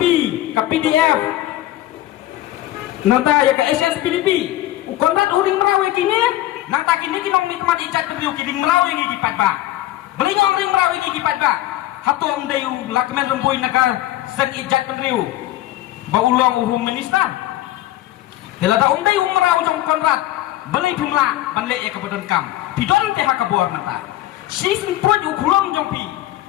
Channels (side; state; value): right; quieter; 14.9 dB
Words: ke PDF nanta ya ke SSPDP ukonrat uring merau ya kini nang tak kini kinong nikmat ijat penreu kiring merau yang gipat ba beli ngong ring merau yang gipat ba hatong dayu lakmen remboi naka sen ijat penreu ba ulong uhum minister helada dayu merau jong konrat beli jumlah banle ya ke badan kam pidon te hakabor nanta sisin poj ukulong jong pi